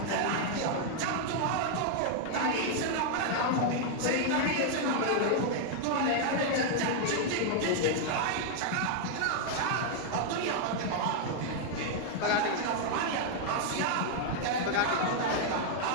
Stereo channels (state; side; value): different; both; correlation 0.00